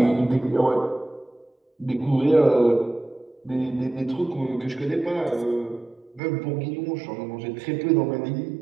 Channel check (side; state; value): left; drops out; at 6.2 s